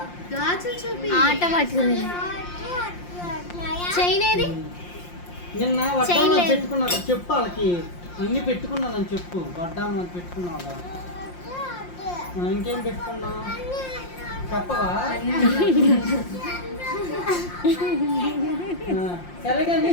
ఆట పట్టుకుంది. చైన్ ఏది? నిన్న వడ్డాను పెట్టుకున్నా చెప్పు, వాళ్ళకి అన్ని పెట్టుకున్నానని చెప్పు. వడ్డాను అని పెట్టుకున్నావా? ఇంకేం పెట్టుకున్నావు చెప్పవా? సరే కానీ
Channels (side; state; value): right; late; 5.7 ms